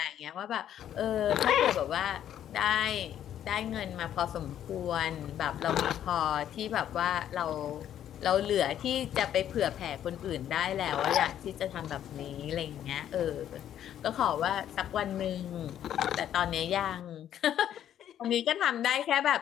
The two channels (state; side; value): quieter; right; 10.6 dB